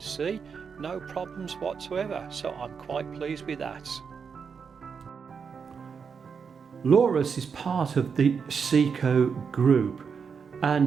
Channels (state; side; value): quieter; left; 6.1 dB